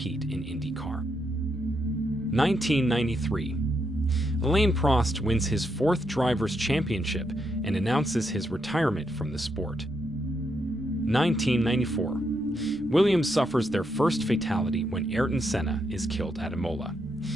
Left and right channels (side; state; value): left; noise; rumble, 24 dB below the sound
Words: in IndyCar. 1993. Alain Prost wins his 4th Drivers' Championship and announces his retirement from the sport. 1994. Williams suffers their first fatality when Ayrton Senna is killed at Imola.